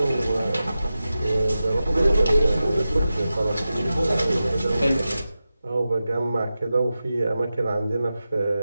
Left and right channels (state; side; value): inverted; both; correlation -0.93